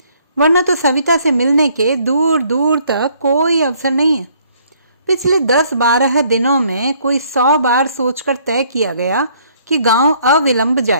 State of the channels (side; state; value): both; inverted; correlation -0.64